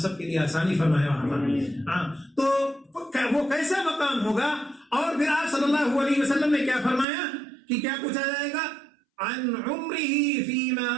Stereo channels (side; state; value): left; drops out; at 7.1 s